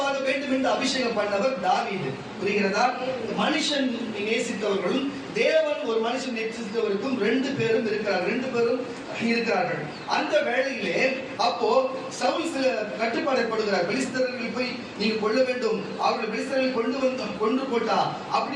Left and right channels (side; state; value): both; identical; correlation 1.00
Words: வேண்டும் என்று அபிஷேகம் பண்ணவர் தாவீது. புரிகிறதா? மனுஷன் நேசித்தவர்களும் தேவன் ஒரு மனுஷன் நேசித்தவருக்கும் ரெண்டு பேரும் இருக்கிறார்கள். அந்த வேளையிலே அப்போ சவுல் சில கட்டுப்பாடை போடுகிறார். பெலிஸ்தர்கள் போய் நீங்க கொள்ள வேண்டும், அவர்கள் பெலிஸ்தர்களை கொண்டு போட்டா